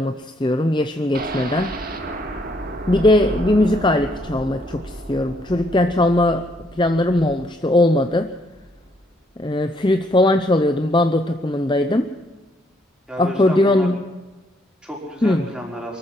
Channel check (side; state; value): both; normal; correlation 0.70